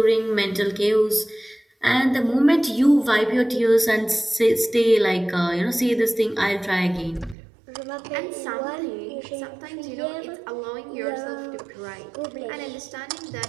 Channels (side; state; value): left; drops out; at 7.4 s